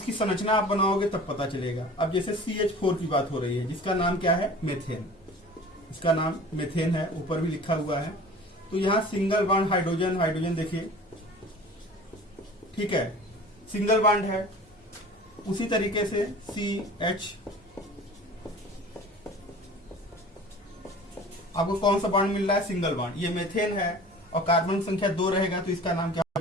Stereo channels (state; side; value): normal; both; correlation 0.42